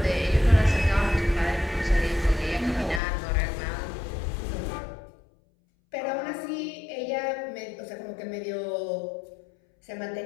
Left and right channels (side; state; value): right; drops out; at 3.0 s